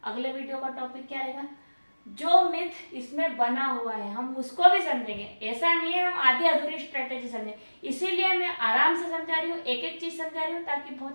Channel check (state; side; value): inverted; both; correlation -1.00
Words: अगले वीडियो का टॉपिक क्या रहेगा? जो मिथ इसमें बना हुआ है हम उसको भी समझेंगे। ऐसा नहीं है हम आधी अधूरी स्ट्रेटेजी समझें, इसीलिए मैं आराम से समझा रही हूँ, एक एक चीज समझा रही हूँ ताकि